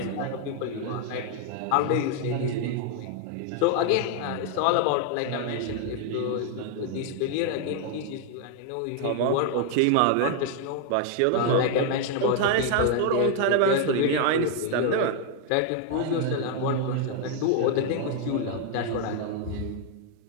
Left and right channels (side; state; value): both; different; correlation 0.00